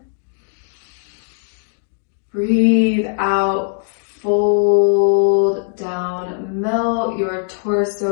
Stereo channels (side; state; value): right; silent; digital silence